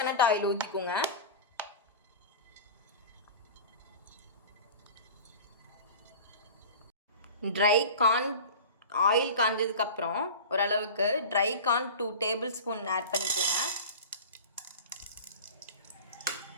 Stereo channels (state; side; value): inverted; both; correlation -0.34